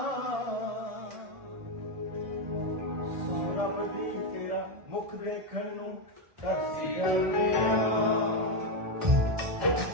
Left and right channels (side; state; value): left; late; 1.2 ms